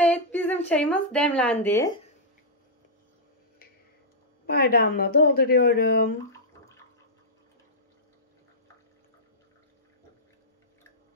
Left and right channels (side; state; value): both; normal; correlation -0.11